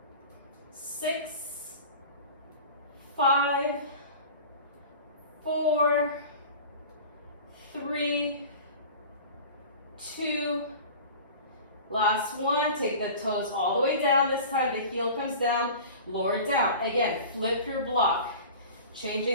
6, 5, 4, 3, 2, last one. Take the toes all the way down. This time the heel comes down, lower down. Again, flip your block.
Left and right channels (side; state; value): both; inverted; correlation -0.38